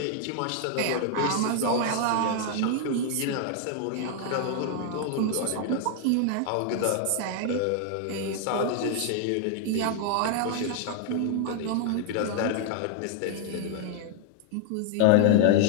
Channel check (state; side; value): different; both; correlation 0.00